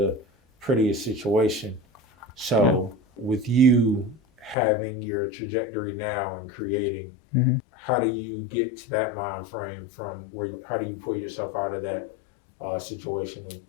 prettiest situation. So with you having your trajectory now and creating, how do you get to that mind frame from how do you pull yourself out of that situation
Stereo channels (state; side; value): drops out; right; at 4.5 s